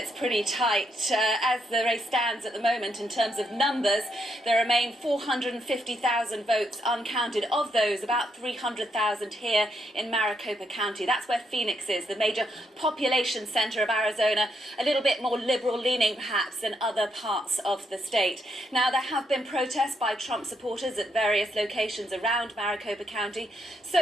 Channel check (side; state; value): both; normal; correlation 0.77